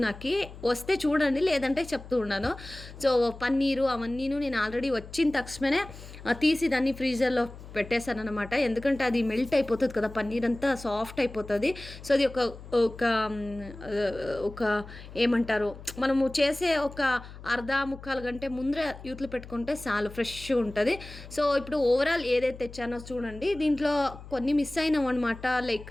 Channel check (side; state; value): left; noise; hum, 15 dB below the sound